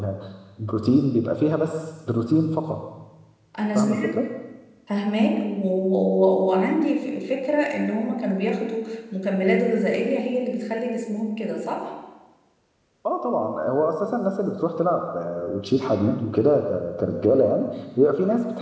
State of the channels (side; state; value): both; identical; correlation 1.00